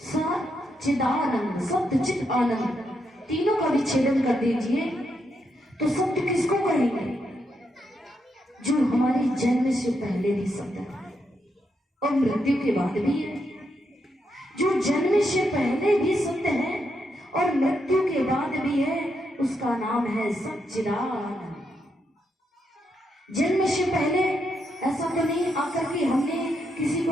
सच्चिदानंद, सत्य चित आनंद, तीनों का विच्छेदन कर दीजिए तो सत्य किसको कहेंगे? जो हमारे जन्म से पहले भी सत्य है और मृत्यु के बाद भी है। जो जन्म से पहले भी सत्य है और मृत्यु के बाद भी है, उसका नाम है सच्चिदानंद। जन्म से पहले ऐसा तो नहीं आकर के हमने किसी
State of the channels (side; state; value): both; normal; correlation 0.81